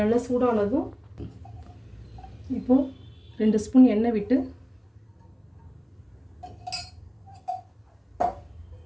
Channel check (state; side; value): identical; both; correlation 1.00